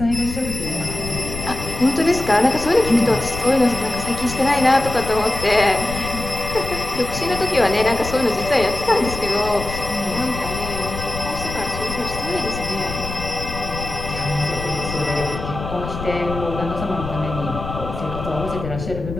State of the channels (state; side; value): noise; left; rumble, 8 dB below the sound